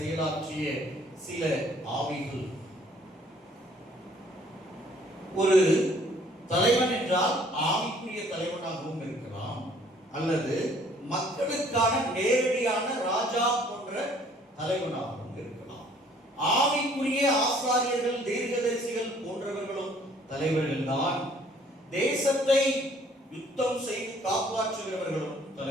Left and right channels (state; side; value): normal; both; correlation 0.59